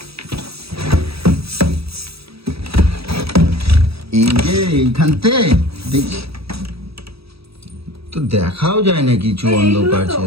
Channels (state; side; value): late; left; 0.77 ms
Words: এই যে এইখানতে দেখি তো দেখাও যায় না কিছু, অন্ধকার